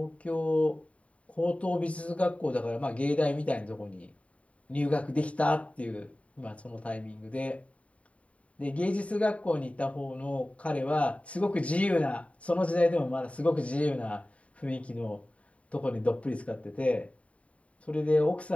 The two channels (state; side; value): late; right; 0.066 ms